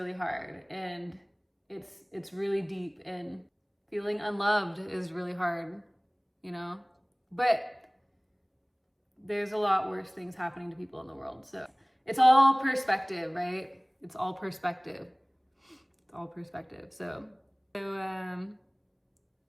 hard, and it's really deep, and feeling unloved is really hard, you know. But there's a lot worse things happening to people in the world. So it's all perspective, right? It's all perspective. It's all perspective. So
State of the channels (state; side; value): identical; both; correlation 1.00